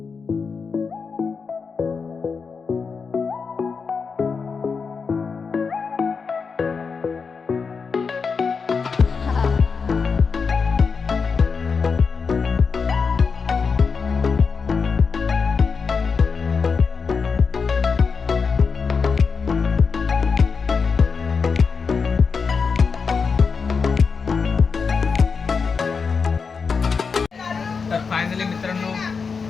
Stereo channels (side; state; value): right; quieter; 5.3 dB